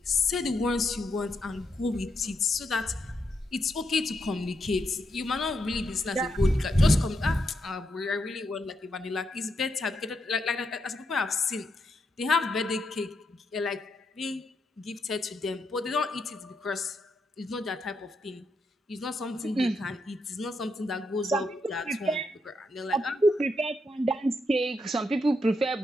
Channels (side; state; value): both; normal; correlation 0.81